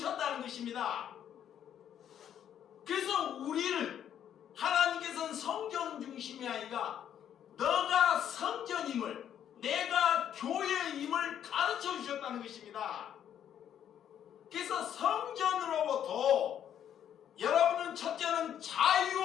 것입니다. 그래서 우리를 하나님께서는 성전 중심이 아니라 너가 성전임을, 내가 교회임을 가르쳐 주셨다는 것입니다. 그래서 성전으로부터 여러분은 첫째는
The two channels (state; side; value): quieter; right; 9.8 dB